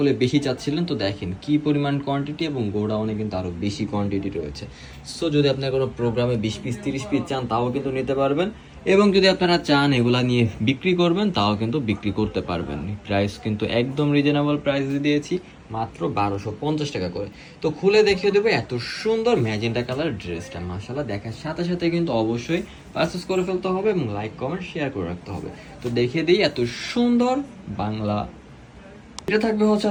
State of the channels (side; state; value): both; identical; correlation 1.00